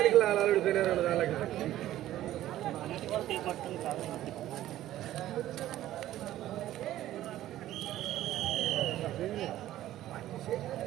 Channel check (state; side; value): quieter; left; 13.7 dB